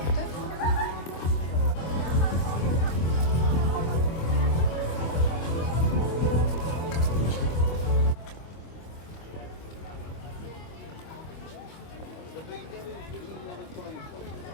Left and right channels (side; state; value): right; late; 24 ms